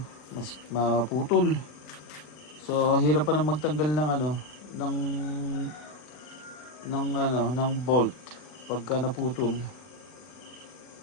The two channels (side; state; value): right; late; 40 ms